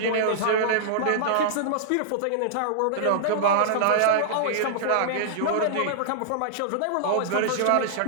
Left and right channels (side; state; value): both; different; correlation -0.02